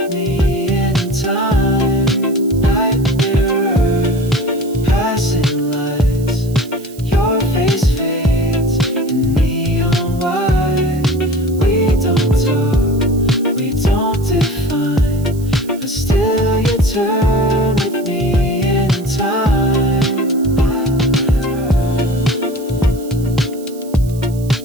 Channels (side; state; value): right; noise; hiss, 21 dB below the sound